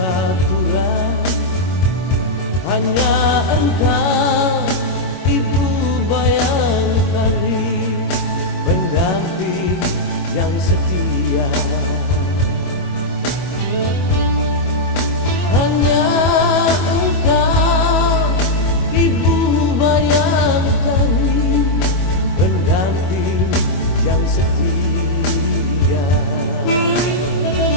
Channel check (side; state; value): right; late; 22 ms